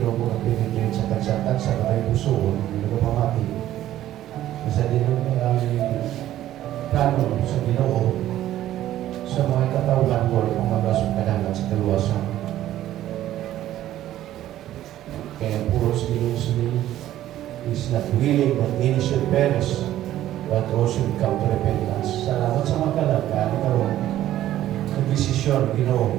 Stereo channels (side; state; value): left; quieter; 13.2 dB